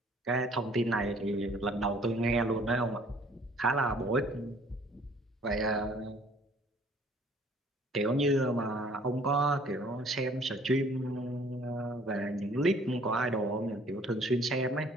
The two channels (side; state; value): both; normal; correlation 0.57